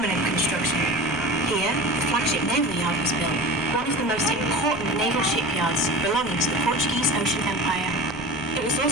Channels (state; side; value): noise; left; rumble, 18 dB below the sound